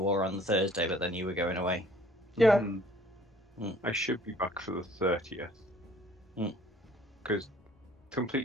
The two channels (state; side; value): normal; both; correlation 0.56